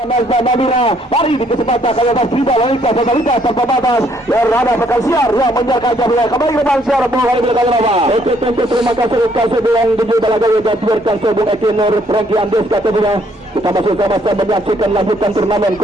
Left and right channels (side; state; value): both; normal; correlation 0.67